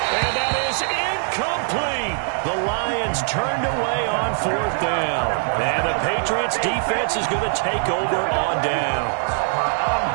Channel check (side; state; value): left; silent; 58 dB below the other